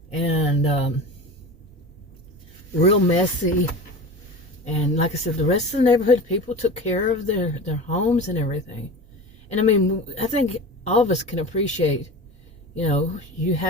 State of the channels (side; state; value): both; normal; correlation 0.31